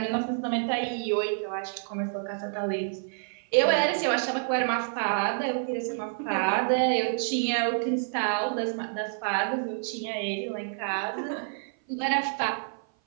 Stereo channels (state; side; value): silent; left; 55 dB below the other